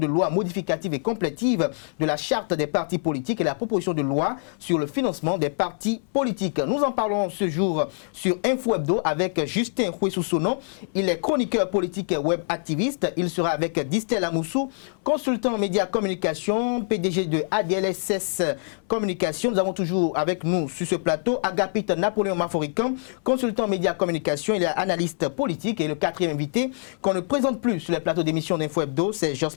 loi modificative et complétive de la charte des partis politiques et la proposition de loi sur le financement des partis politiques. Nous en parlons ce jour sur Info Hebdo avec Justin Huessoussonon. Il est chroniqueur politique et web activiste. Il sera avec Distel Amoussou, consultant médias communication, PDG de ADLSS Communication. Nous avons toujours avec nous sur ce plateau Agapit Napoléon Maforican, consultant médias communication. Il est analyste politique et le quatrième invité qu'on ne présente plus sur les plateaux d'émission d'Info Hebdo, c'est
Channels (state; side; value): silent; right; 62 dB below the other